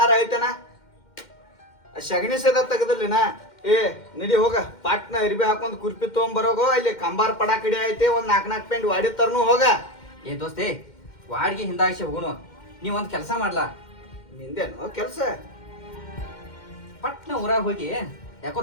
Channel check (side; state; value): right; late; 2.1 ms